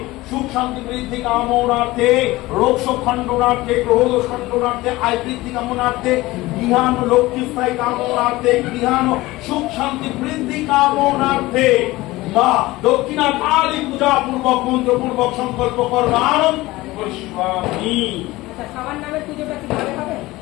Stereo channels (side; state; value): right; quieter; 19.3 dB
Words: সুখ শান্তি বৃদ্ধি কামনার্থে রোগ শোক খণ্ডনার্থে গ্রহদোষ খণ্ডনার্থে আয় বৃদ্ধি কামনার্থে গৃহান লক্ষ্মী স্থায়ী কামনার্থে গৃহান সুখ শান্তি বৃদ্ধি কামনার্থে বা দক্ষিণা কালী পূজা পূর্বক মন্ত্রপূর্বক সংকল্প কর্মানন করিষ্যামি।